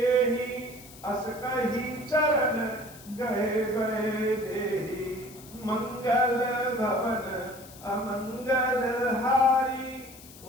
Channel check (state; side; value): noise; left; hiss, 19 dB below the sound